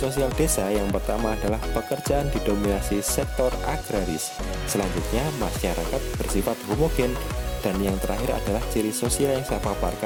desa yang pertama adalah pekerjaan didominasi sektor agraris. Selanjutnya masyarakat bersifat homogen. Dan yang terakhir adalah ciri sosial yang saya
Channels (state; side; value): identical; both; correlation 1.00